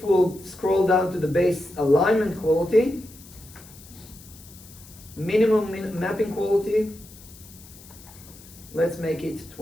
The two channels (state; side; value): noise; left; hiss, 21 dB below the sound